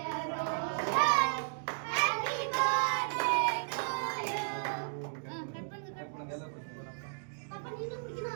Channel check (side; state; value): left; silent; digital silence